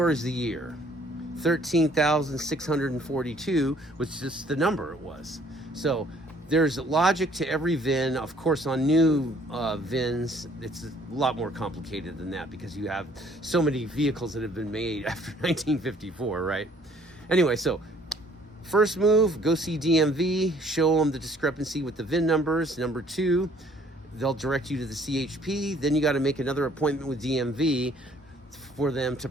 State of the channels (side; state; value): both; normal; correlation 0.59